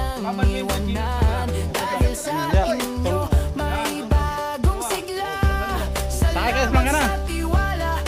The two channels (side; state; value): both; identical; correlation 1.00